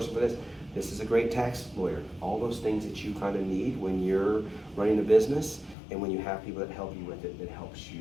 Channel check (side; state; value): right; drops out; at 5.8 s